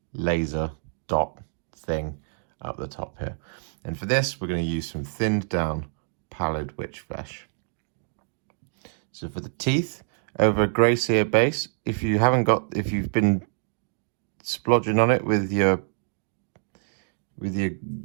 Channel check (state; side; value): silent; left; digital silence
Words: laser dot thing up the top here. And for this, we're going to use some thinned down Pallid Wych Flesh. So for the teeth, over a grey Seer base, if you've been splodging on it with your